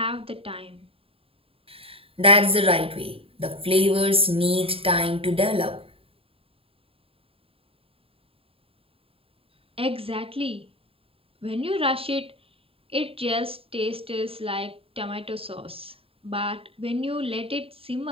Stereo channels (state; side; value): late; left; 0.27 ms